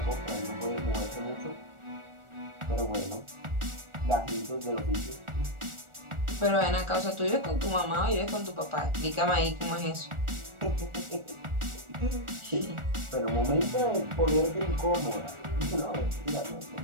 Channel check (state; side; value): late; left; 1.4 ms